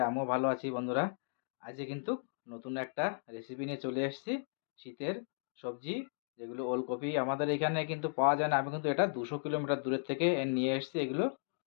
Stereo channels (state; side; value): silent; right; digital silence